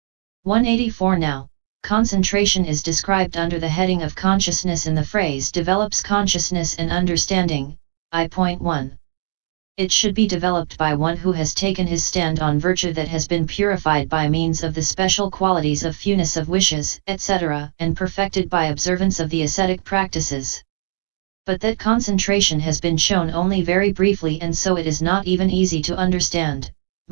184 Now, concentration is described under the heading of consciousness in the phrase develops consciousness and understanding, I.1. It should be developed by one who has taken his stand on virtue that has been purified by means of the special qualities of fewness of wishes, etc., and perfected by observance of the ascetic practices. But that concentration has been shown only very briefly, and so it is not even easy to understand,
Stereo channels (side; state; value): left; silent; digital silence